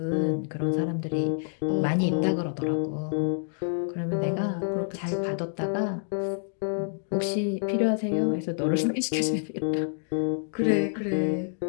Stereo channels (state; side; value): silent; right; digital silence